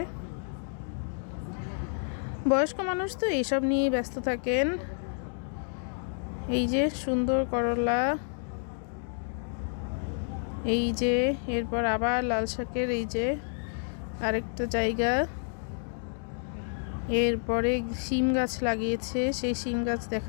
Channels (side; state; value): right; silent; digital silence